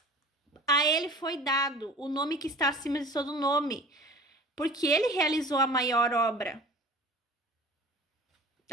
A ele foi dado o nome que está acima de todo nome, porque ele realizou a maior obra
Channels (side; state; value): both; normal; correlation 0.42